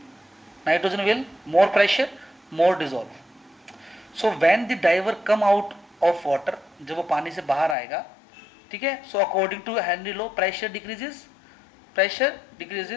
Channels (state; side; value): drops out; right; at 7.8 s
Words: Nitrogen will, more pressure, more dissolve. So when the diver come out of water, जब वो पानी से बाहर आएगा, ठीक है, so according to Henry law, pressure decreases,